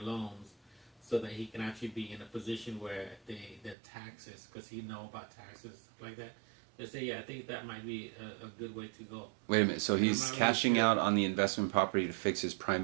loans so that he can actually be in a position where the taxes, because he know about taxes like that. They say, yeah, I think that might be a good way to go. Wait a minute, so he's cashing out on the investment property to fix his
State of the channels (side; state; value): left; drops out; at 3.8 s